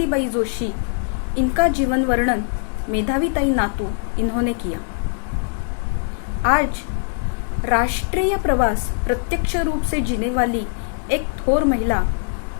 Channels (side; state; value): right; silent; digital silence